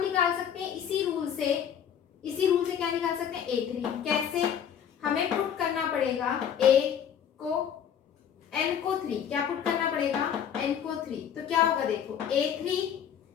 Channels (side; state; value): right; quieter; 8.6 dB